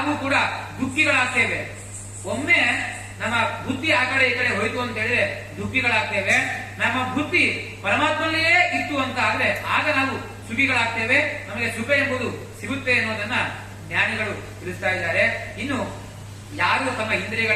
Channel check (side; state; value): both; identical; correlation 1.00